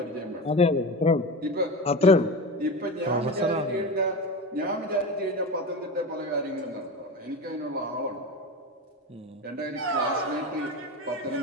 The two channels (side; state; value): both; normal; correlation 0.26